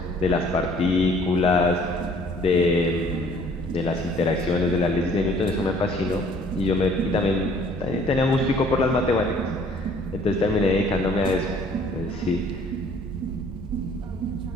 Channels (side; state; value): both; normal; correlation 0.57